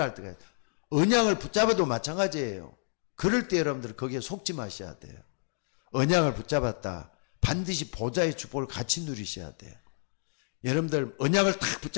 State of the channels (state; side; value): silent; right; digital silence